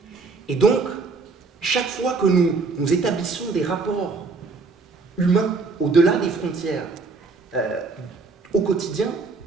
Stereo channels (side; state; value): left; quieter; 4.2 dB